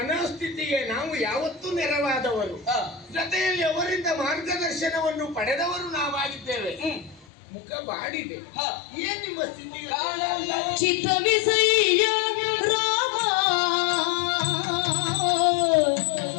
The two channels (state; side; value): drops out; right; at 7.2 s